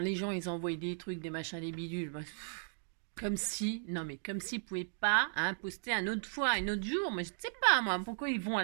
les gens, ils envoyaient des trucs, des machins, des bidules. Bah, comme si, non, mais comme s'ils ne pouvaient pas hein, poster un autre fois, un autre jour. Mais je ne sais pas, moi, pourquoi ils vont à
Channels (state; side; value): silent; left; digital silence